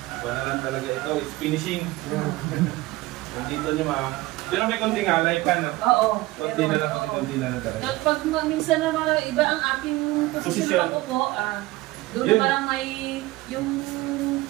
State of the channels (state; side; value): quieter; left; 19.4 dB